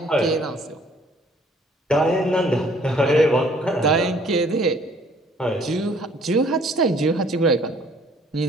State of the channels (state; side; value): normal; both; correlation 0.58